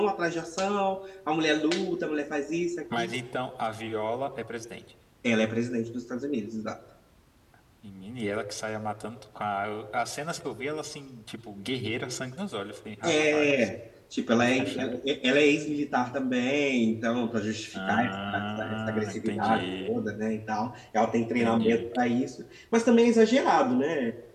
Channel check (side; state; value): both; identical; correlation 1.00